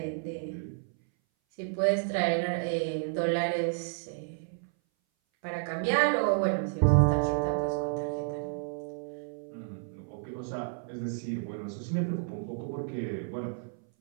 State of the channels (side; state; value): left; silent; 57 dB below the other